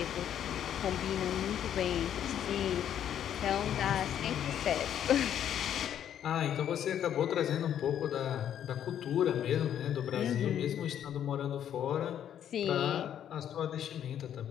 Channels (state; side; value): quieter; right; 9.9 dB